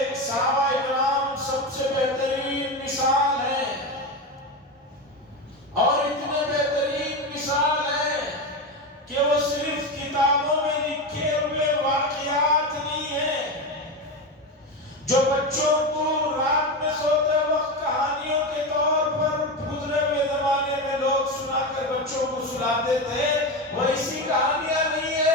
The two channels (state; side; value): normal; both; correlation 0.18